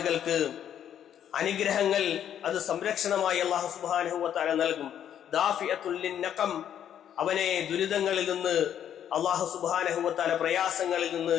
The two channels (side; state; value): right; quieter; 9.8 dB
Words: അനുഗ്രഹങ്ങൾ അത് സംരക്ഷണമായി അള്ളാഹു സുബ്ഹാനഹു വ തആല നൽകും. ദാഫിഅത്തുൽ ലിന്നഖം, അവനെ ദുരിതങ്ങളിൽ നിന്ന് അള്ളാഹു സുബ്ഹാനഹു വ തആല പ്രയാസങ്ങളിൽ നിന്ന്